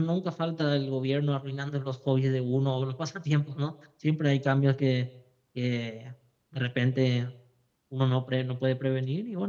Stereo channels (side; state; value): both; identical; correlation 1.00